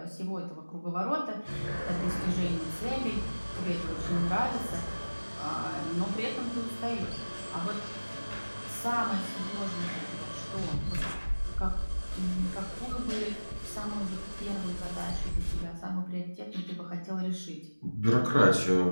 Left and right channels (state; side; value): inverted; both; correlation -1.00